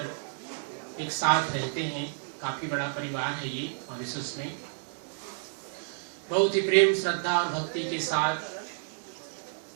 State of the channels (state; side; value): silent; left; 58 dB below the other